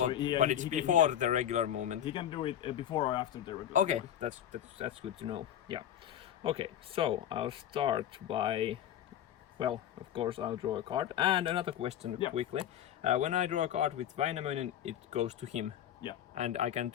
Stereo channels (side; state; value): right; quieter; 10.7 dB